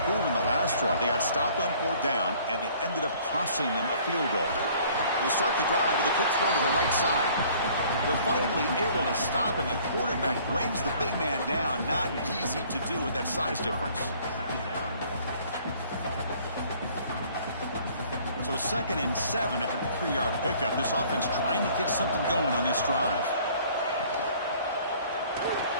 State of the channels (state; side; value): inverted; both; correlation -0.55